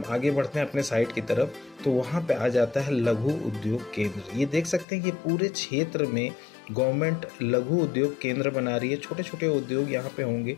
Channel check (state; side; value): drops out; right; at 4.9 s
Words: आगे बढ़ते हैं अपने साइट की तरफ तो वहाँ पे आ जाता है लघु उद्योग केंद्र। ये देख सकते हैं कि पूरे क्षेत्र में गवर्नमेंट लघु उद्योग केंद्र बना रही है। छोटे छोटे उद्योग यहाँ पे होंगे,